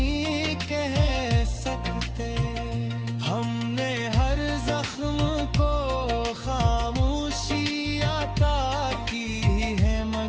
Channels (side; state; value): both; identical; correlation 1.00